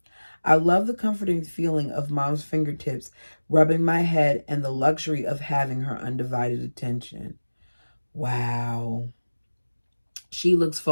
I love the comforting feeling of mom's fingertips rubbing my head and the luxury of having her undivided attention. Wow. She looks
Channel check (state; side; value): inverted; both; correlation -1.00